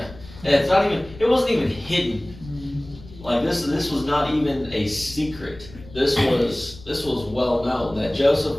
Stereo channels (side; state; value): left; noise; rumble, 18 dB below the sound